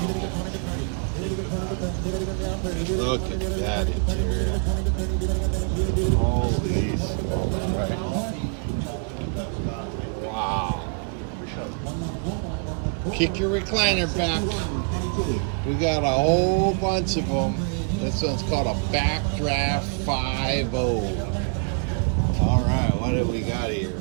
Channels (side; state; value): left; quieter; 39.1 dB